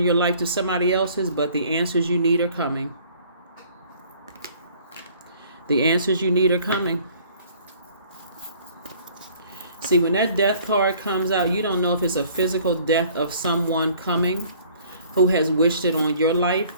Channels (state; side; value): inverted; both; correlation -0.55